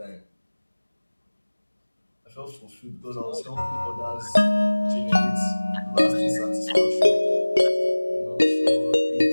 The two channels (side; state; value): both; inverted; correlation -1.00